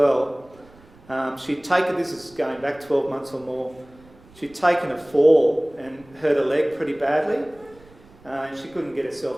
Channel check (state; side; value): noise; right; rumble, 26 dB below the sound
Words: she'd taken, this is going back 12 months or more, she'd taken a fall and hurt her leg pretty badly, and she couldn't get